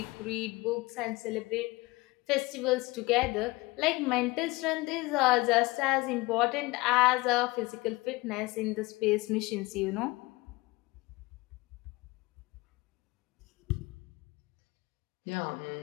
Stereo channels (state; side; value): quieter; right; 22.6 dB